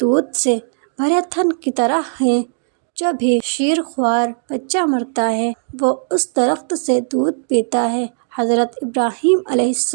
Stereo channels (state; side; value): silent; left; digital silence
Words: سے بھرے تھن کی طرح ہے۔ جو بھی شیر خوار بچہ مرتا ہے وہ اس درخت سے دودھ پیتا ہے۔ حضرت ابراہیم علیہ